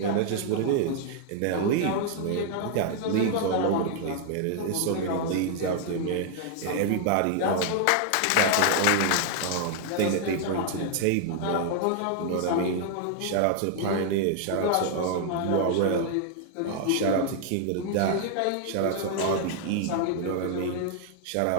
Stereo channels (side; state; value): both; different; correlation 0.00